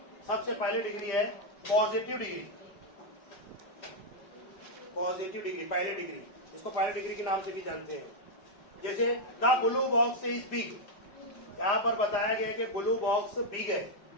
सबसे पहले डिग्री है पॉजिटिव डिग्री। पॉजिटिव डिग्री, पहले डिग्री, इसको पहले डिग्री के नाम से भी जानते हैं। जैसे the blue box is big, यहां पर बताया गया है कि ब्लू बॉक्स बिग है,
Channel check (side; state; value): right; late; 5.2 ms